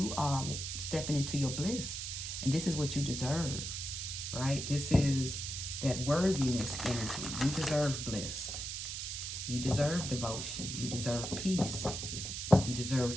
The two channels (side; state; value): right; noise; hiss, 5 dB below the sound